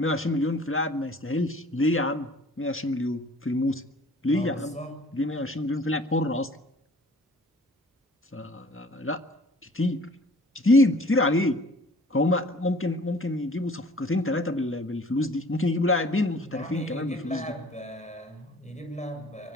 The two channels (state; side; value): normal; both; correlation 0.51